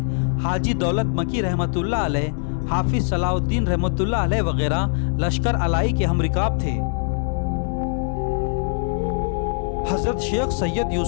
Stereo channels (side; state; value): right; silent; 64 dB below the other